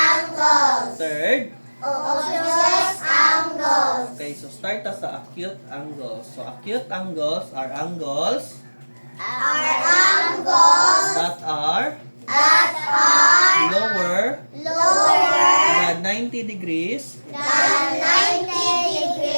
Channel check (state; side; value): inverted; both; correlation -1.00